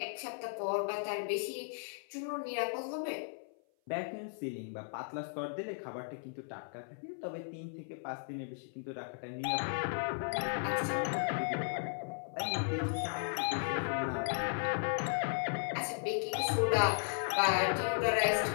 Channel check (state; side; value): silent; right; 54 dB below the other